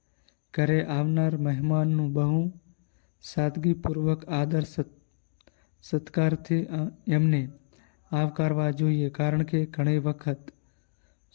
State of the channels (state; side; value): silent; right; digital silence